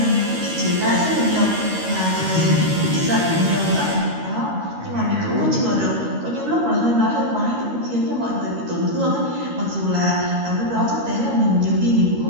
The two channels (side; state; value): left; late; 13 ms